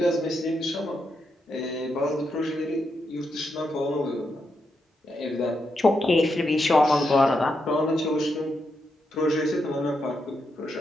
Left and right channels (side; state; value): both; normal; correlation 0.83